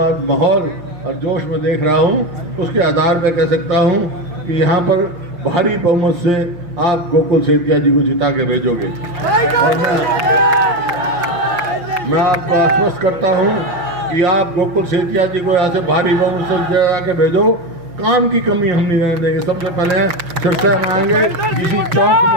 माहौल और जोश में देख रहा हूँ उसके आधार पर कह सकता हूँ कि यहाँ पर भारी बहुमत से आप गोकुल सेतिया जी को जिता के भेजोगे। और मैं आपको आश्वस्त करता हूँ कि आप गोकुल सेतिया जी को यहाँ से भारी बहुमत से जिता के भेजो। काम की कमी हम नहीं रहने देंगे। सबसे पहले सिरसा में आएंगे, किसी चौक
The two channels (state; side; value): late; left; 6.0 ms